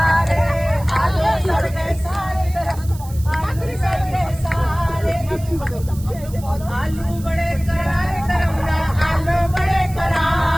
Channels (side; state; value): right; noise; hiss, 19 dB below the sound